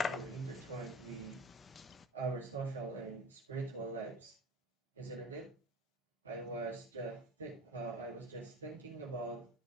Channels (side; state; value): both; normal; correlation 0.36